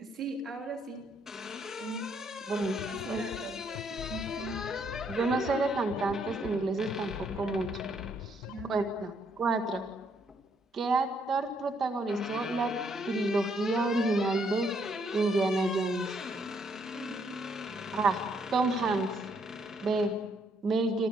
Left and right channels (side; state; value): both; normal; correlation 0.71